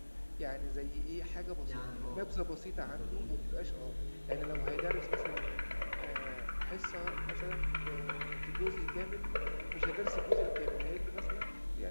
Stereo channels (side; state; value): both; inverted; correlation -1.00